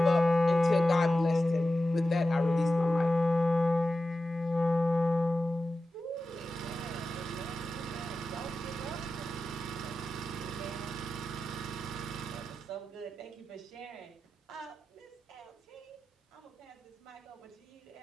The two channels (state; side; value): normal; both; correlation 0.93